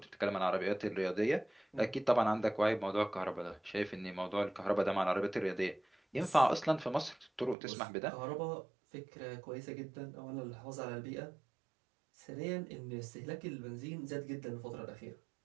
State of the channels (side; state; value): left; drops out; at 7.6 s